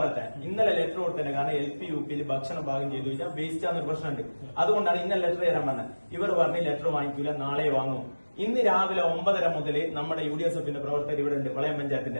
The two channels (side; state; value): both; inverted; correlation -1.00